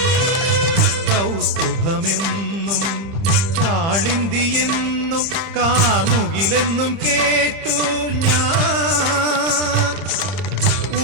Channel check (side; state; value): left; late; 30 ms